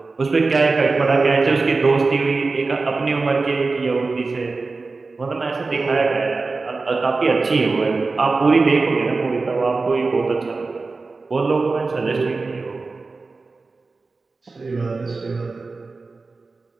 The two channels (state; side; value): quieter; left; 3.9 dB